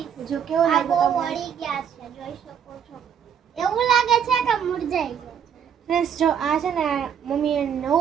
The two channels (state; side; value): quieter; left; 8.2 dB